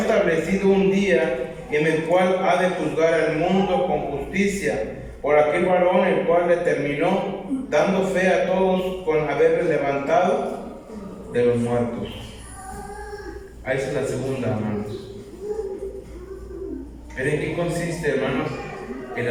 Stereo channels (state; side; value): identical; both; correlation 1.00